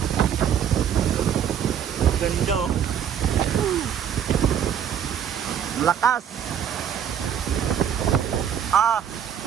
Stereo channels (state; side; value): quieter; left; 8.8 dB